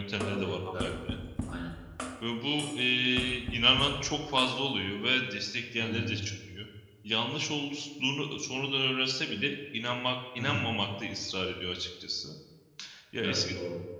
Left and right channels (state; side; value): identical; both; correlation 1.00